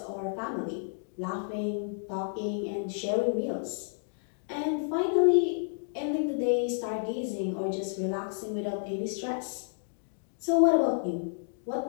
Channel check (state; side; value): silent; right; digital silence